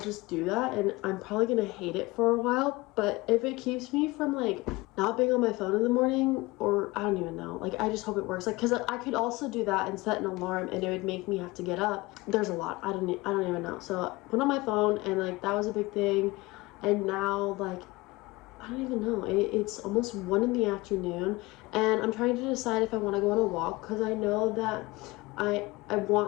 do that. And I'm probably gonna hate it for a while, but if it keeps me from like not being on my phone in the morning, or I don't even know, like I just hope it works. Like because I could also do that and set an alarm and it would make me have to get up. There's a lot. I don't even know. So I put on my phone and like that was a big thing. And now like I don't even know. It's almost 1 in the afternoon and I'm trying to decide if I want to go on a walk because I know that I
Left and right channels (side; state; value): right; quieter; 22.0 dB